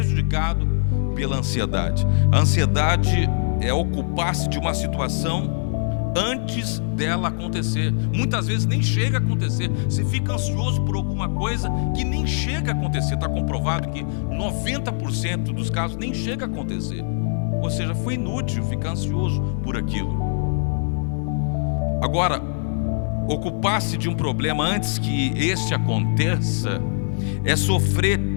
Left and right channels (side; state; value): right; silent; digital silence